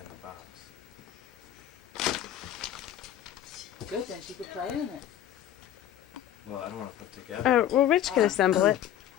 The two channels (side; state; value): right; quieter; 11.3 dB